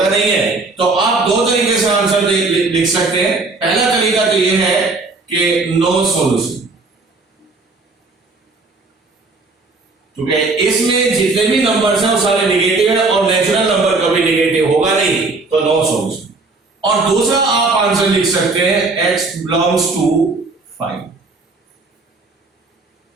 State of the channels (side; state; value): left; quieter; 3.6 dB